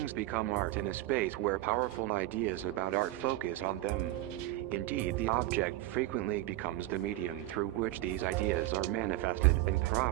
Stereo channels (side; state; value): left; quieter; 16.3 dB